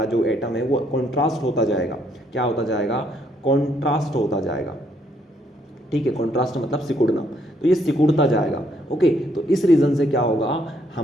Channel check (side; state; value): both; normal; correlation 0.71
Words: जो एटम है वो कॉन्ट्रास्ट होता जाएगा। क्या होता जाएगा, कॉन्ट्रास्ट होता जाएगा, ठीक है। कॉन्ट्रास्ट मतलब सिकुड़ना, तो ये सिकुड़ता जाएगा, ओके। तो इस रीज़न से क्या होगा,